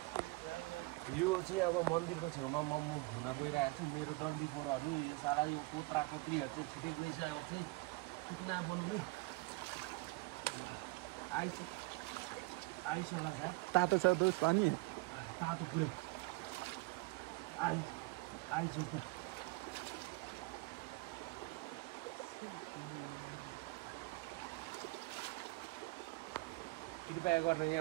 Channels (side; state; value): left; quieter; 24.1 dB